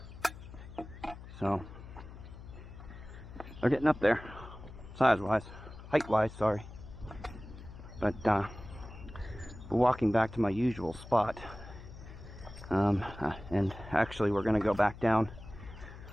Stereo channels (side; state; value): left; noise; hum, 15 dB below the sound